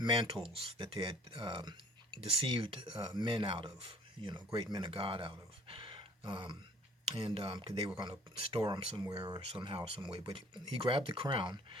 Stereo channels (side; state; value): both; normal; correlation 0.53